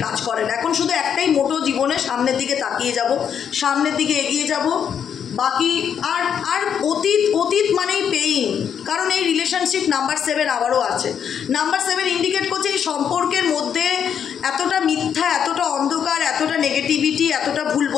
কাজ করে না। এখন শুধু একটাই মোটো জীবনে, সামনের দিকে তাকিয়ে যাব, সামনের দিকে এগিয়ে যাব। বাকি আর অতীত মানেই পেইন। কারণ এই রিলেশনশিপ নাম্বার 7 আবারও আছে। নাম্বার 7 ইন্ডিকেট করছে এই সম্পর্কের মধ্যে এতটা মিথ্যা, এতটা অন্ধকার, এতটা নেগেটিভিটি, এতটা ভুল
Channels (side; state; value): right; quieter; 8.1 dB